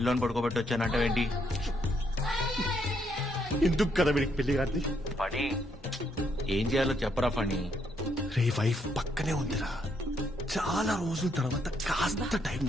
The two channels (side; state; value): both; normal; correlation 0.74